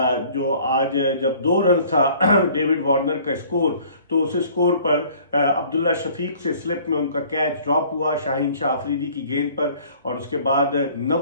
जो आज जब 2 रन था डेविड वार्नर का स्कोर, तो उस स्कोर पर अब्दुल्ला शफीक से स्लिप में उनका कैच ड्रॉप हुआ शाहीन शाह अफरीदी की गेंद पर, और उसके बाद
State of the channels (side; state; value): both; inverted; correlation -0.53